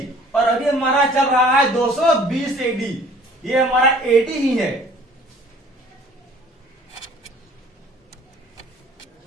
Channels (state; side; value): normal; both; correlation 0.52